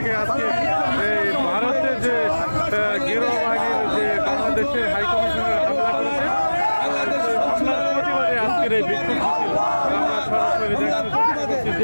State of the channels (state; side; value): inverted; both; correlation -1.00